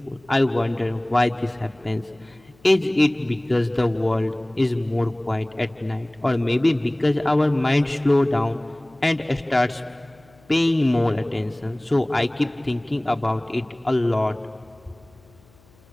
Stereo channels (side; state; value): left; noise; hum, 30 dB below the sound